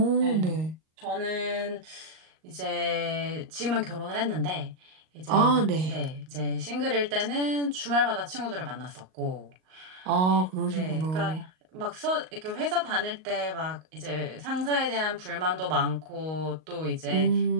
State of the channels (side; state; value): left; late; 38 ms